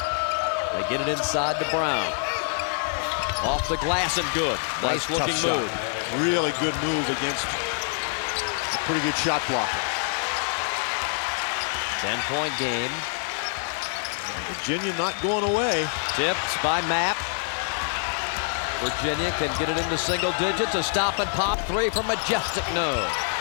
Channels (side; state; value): right; silent; 61 dB below the other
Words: They get it inside to Brown. Off the glass and good. Nice looking move. Really good move against a pretty good shot blocker. 10-point game. Virginia not going away. Tipped by Mapp. Virginia can get it into single digits. A stop and pop 3 from Majestic. No.